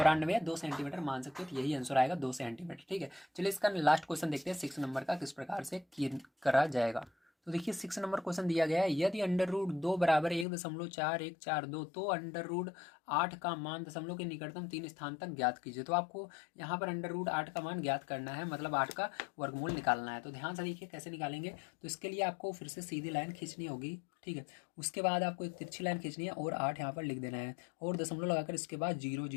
है, 2 सेंटीमीटर मान सकते हो, तो यही आंसर आएगा, 2 सेंटीमीटर। ठीक है, चलिए इसका लास्ट क्वेश्चन देखते हैं 6 नंबर का, किस प्रकार से करा जाएगा। तो देखिए 6 नंबर क्वेश्चन दिया गया है, यदि √2 बराबर 1.4142, तो √8 का मान दशमलव के निकटतम 3 स्थान तक ज्ञात कीजिए। तो आपको यहाँ पर √8 का मान ज्ञात करना है, मतलब 8 का वर्गमूल निकालना है। तो ध्यान से देखिए कैसे निकालेंगे, तो इसके लिए आपको फिर से सीधी लाइन खींचनी होगी। ठीक है, उसके बाद आपको एक तिरछी लाइन खींचनी है और 8 यहाँ पर लिख देना है, और दशमलव लगाकर इसके बाद 0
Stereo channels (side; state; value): right; drops out; at 10.5 s